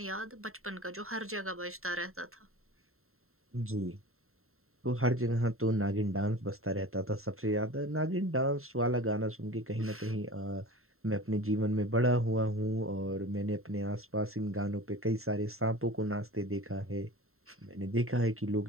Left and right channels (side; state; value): left; late; 0.62 ms